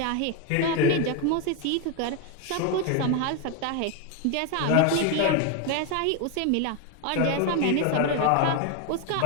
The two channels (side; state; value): both; different; correlation 0.01